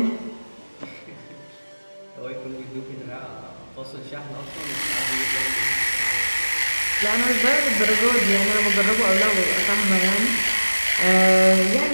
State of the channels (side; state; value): both; inverted; correlation -1.00